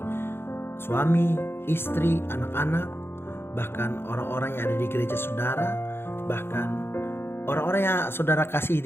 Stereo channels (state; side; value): late; right; 0.11 ms